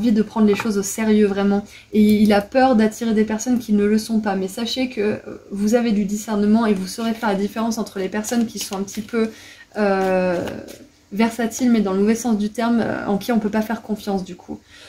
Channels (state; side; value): identical; both; correlation 1.00